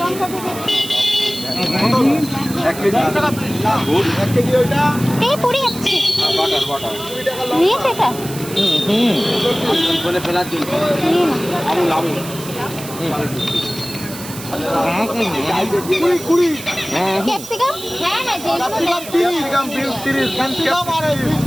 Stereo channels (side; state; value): right; noise; hiss, 13 dB below the sound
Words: ক্যাপসিকাম, হ্যাঁ হ্যাঁ,